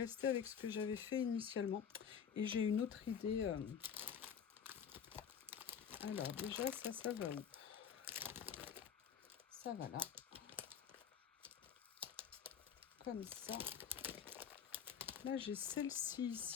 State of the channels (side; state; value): right; quieter; 7.8 dB